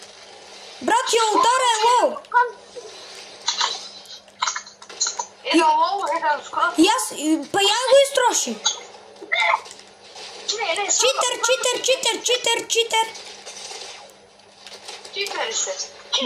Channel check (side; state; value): both; identical; correlation 1.00